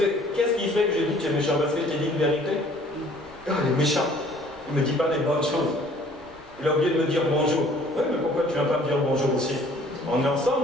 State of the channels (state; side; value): normal; both; correlation 0.55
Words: qu'est-ce qui fait que je dis que tu es méchant? Parce que je t'ai dit une vérité. Il est méchant. Il ne me dit pas les bonnes choses. Il a oublié de me dire bonjour. Oui, mais pourquoi tu ne viens pas me dire bonjour aussi? On est